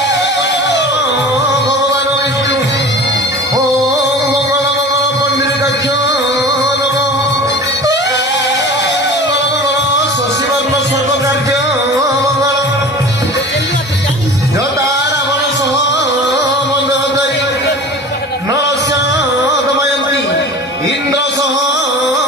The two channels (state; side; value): normal; both; correlation 0.38